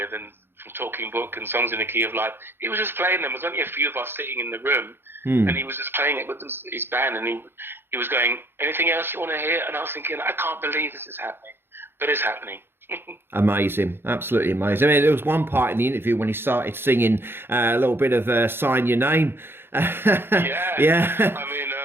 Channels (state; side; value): late; left; 0.11 ms